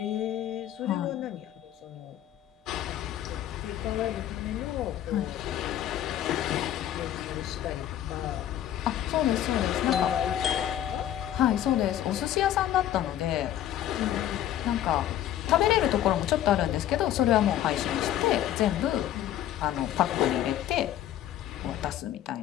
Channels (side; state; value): right; quieter; 11.7 dB